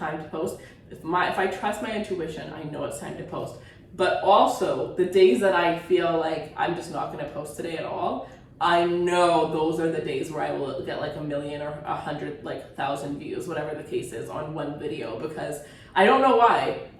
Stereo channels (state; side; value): identical; both; correlation 1.00